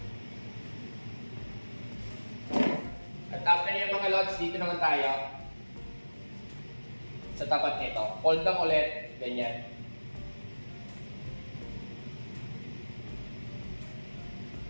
At after yung mga lods, dito naman tayo sa tapat nito. Fold lang ulit, ganyan.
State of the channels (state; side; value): inverted; both; correlation -1.00